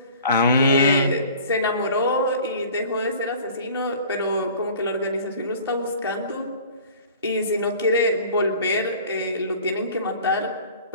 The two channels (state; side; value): inverted; both; correlation -0.46